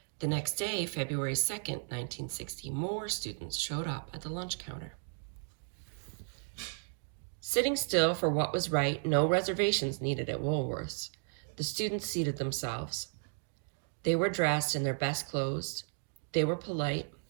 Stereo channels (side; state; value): left; silent; 55 dB below the other